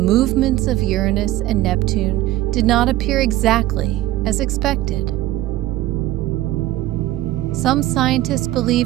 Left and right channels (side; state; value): left; quieter; 15.4 dB